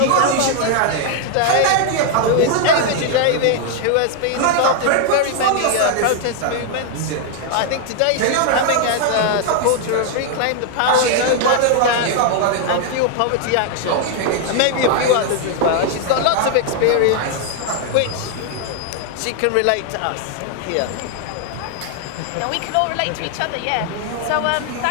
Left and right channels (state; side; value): different; both; correlation 0.00